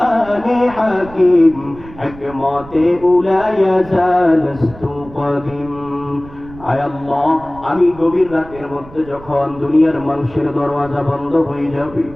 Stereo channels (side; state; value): right; noise; rumble, 19 dB below the sound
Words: হাকিম, হিকমতে উলা ইয়াজালস্তু কদিম। আয় আল্লাহ, আমি গভীর রাতের মধ্যে যখন দুনিয়ার মানুষের দরওয়াজা বন্ধ হয়ে যাবে,